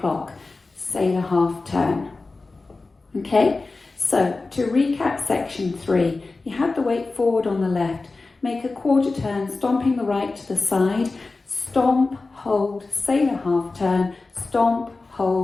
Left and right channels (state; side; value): quieter; right; 3.6 dB